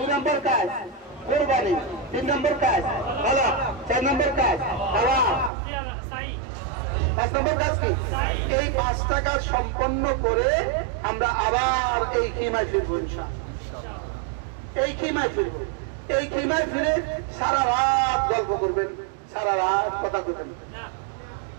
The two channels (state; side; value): drops out; left; at 5.5 s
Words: নম্বর কাজ কোরবানি, 3 নম্বর কাজ হলক, 4 নম্বর কাজ তাওয়াফ, 5 নম্বর কাজ কি? এই 5টা কাজ সম্পন্ন করে আমরা আবার এই খিমায় ফিরবো ইনশাআল্লাহ। এই খিমায় ফিরবো। এই খিমায় ফিরে সারা রাত গল্প করবেন, সারা রাত কথা করবেন।